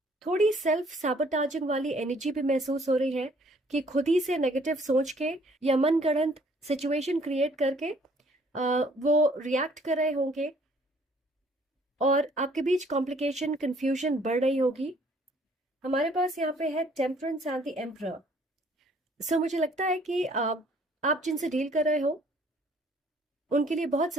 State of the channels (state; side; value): normal; both; correlation 0.60